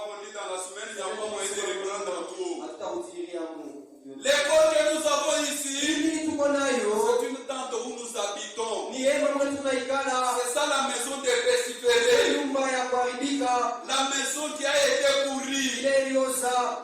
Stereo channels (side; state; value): both; identical; correlation 1.00